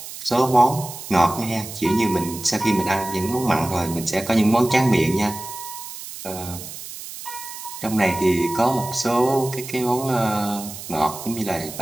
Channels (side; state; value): right; noise; hiss, 11 dB below the sound